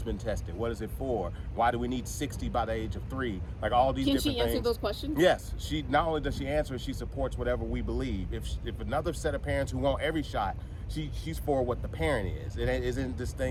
been tested? What is it for? Why do we need 60 by the age of 3? Like all these different things. Can she answer those questions? Yes. She not only does she answer, she supports whatever we believe. If another set of parents who want every shot, she's for what the parent is. It isn't this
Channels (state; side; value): identical; both; correlation 1.00